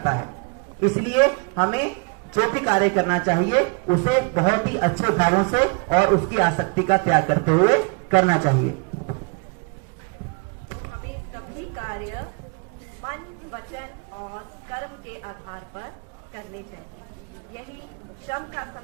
है। इसलिए हमें जो भी कार्य करना चाहिए उसे बहुत ही अच्छे भावों से और उसकी आसक्ति का त्याग करते हुए करना चाहिए। हमें सभी कार्य मन, वचन और कर्म के आधार पर करने चाहिए। यही श्रम का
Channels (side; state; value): left; quieter; 33.4 dB